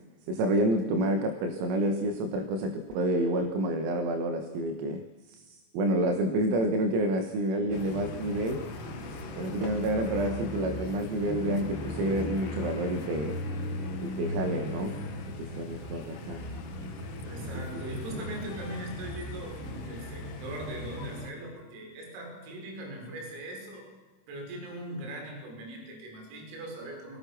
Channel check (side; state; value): left; late; 26 ms